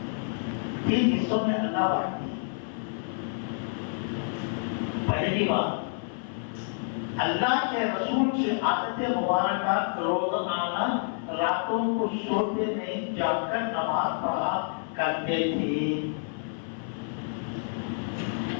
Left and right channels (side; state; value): right; silent; 59 dB below the other